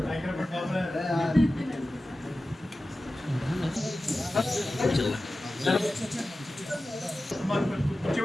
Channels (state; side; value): normal; both; correlation 0.95